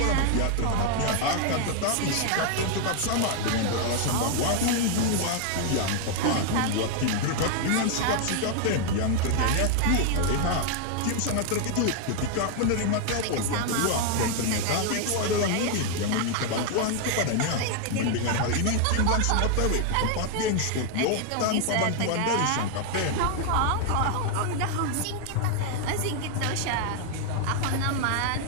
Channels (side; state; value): both; different; correlation 0.00